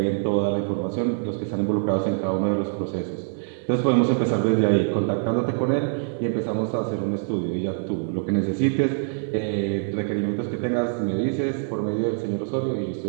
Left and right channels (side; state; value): left; silent; digital silence